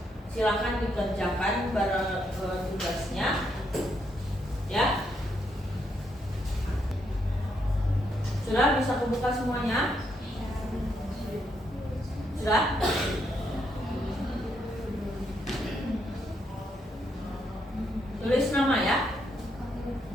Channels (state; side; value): normal; both; correlation 0.77